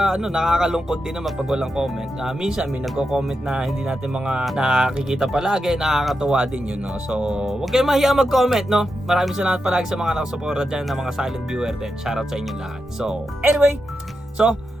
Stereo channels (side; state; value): both; normal; correlation 0.87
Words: din naman pag walang comment. Minsan may nagko-comment na hindi natin mga nakikita palagi, nakakatuwa din yun, no. So, huwag kayong mahiya mag-comment, no. Maraming salamat palagi sa mga nakasuporta dyan na mga silent viewer din. Shoutout sa inyo lahat. So, anyway,